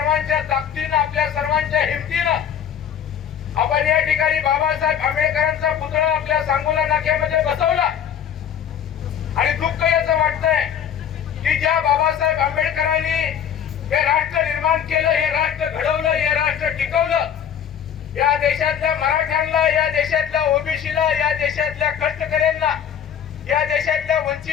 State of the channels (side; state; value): right; quieter; 8.7 dB